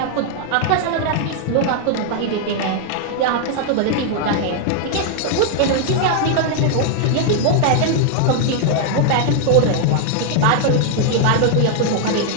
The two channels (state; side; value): different; both; correlation 0.00